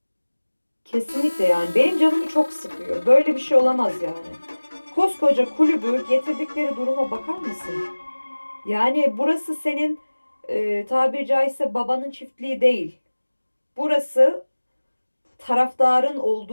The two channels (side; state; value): both; inverted; correlation -1.00